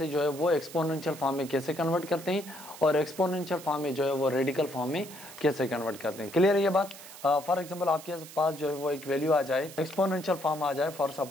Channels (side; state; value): right; noise; hiss, 16 dB below the sound